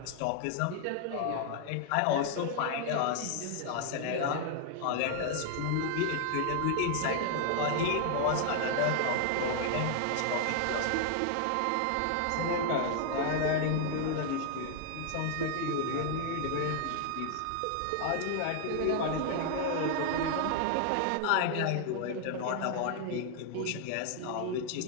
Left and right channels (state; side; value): different; both; correlation 0.00